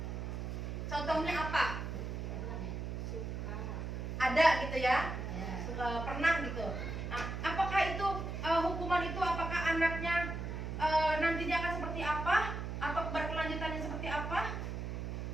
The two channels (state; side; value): noise; right; hum, 4 dB below the sound